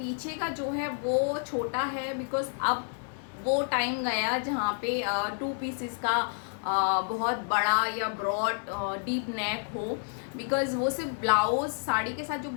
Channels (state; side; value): silent; right; 58 dB below the other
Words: का जो है वो छोटा है, बिकॉज अब वो टाइम गया जहाँ पे 2 पीसेस का बहुत बड़ा या ब्रॉड डीप नेक हो, बिकॉज वो सिर्फ ब्लाउज, साड़ी के साथ जो